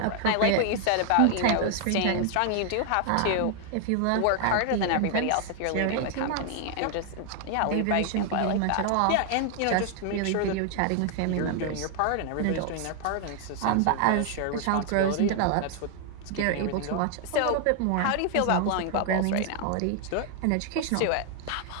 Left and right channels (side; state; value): both; different; correlation 0.00